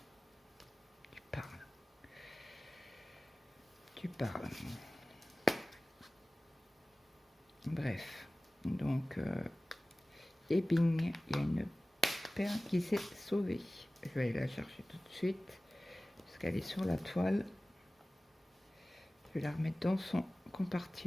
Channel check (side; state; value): both; normal; correlation 0.97